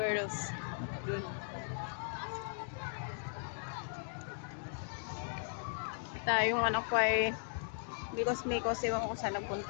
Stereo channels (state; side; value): silent; right; digital silence